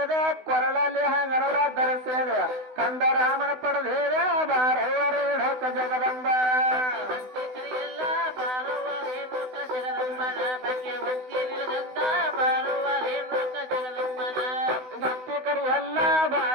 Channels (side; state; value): left; late; 16 ms